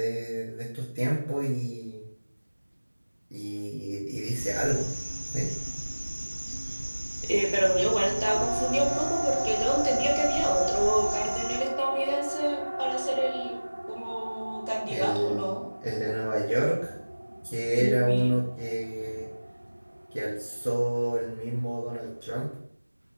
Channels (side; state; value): both; inverted; correlation -1.00